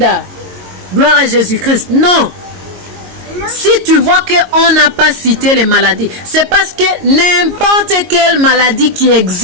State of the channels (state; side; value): late; left; 22 ms